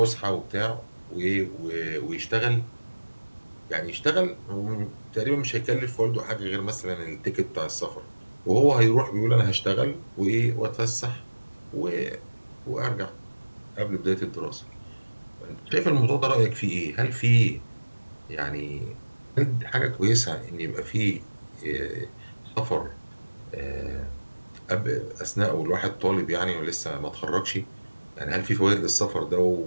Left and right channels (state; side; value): inverted; both; correlation -1.00